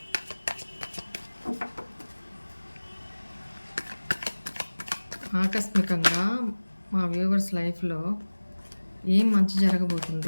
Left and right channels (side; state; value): both; inverted; correlation -1.00